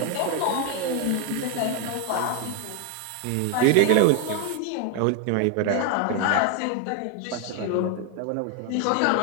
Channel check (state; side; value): different; both; correlation 0.01